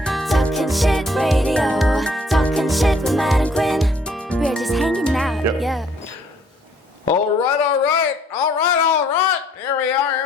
Talking shit radio. Talking shit with Matt and Quinn. We're just hanging out, yeah. All right. Here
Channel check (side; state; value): both; normal; correlation 0.63